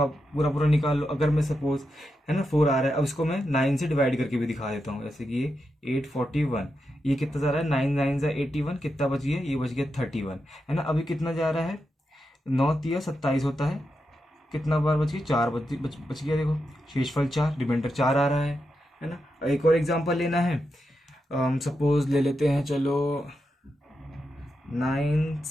पूरा पूरा निकाल लो, अगर मैं सपोज, है ना, 4 आ रहा है, अब इसको मैं 9 से डिवाइड करके भी दिखा देता हूँ। जैसे कि ये 841, ये कितना जा रहा है, 9 9 जा 81, कितना बच गया, ये बच गया 31, है ना। अभी कितना जा रहा है, 9 3 27 होता है, कितना बार बच गई, 4 बच गया। देखो शेषफल 4, रिमाइंडर 4 आ रहा है ना। एक और एग्जांपल लेना है, सपोज ले लेते हैं, चलो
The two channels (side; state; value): both; normal; correlation 0.87